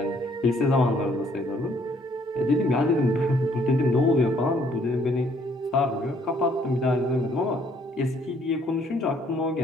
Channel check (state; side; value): normal; both; correlation 0.65